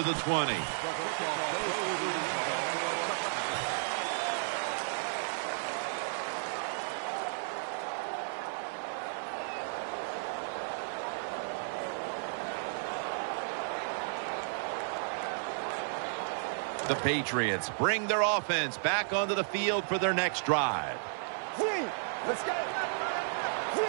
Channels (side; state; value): left; silent; 55 dB below the other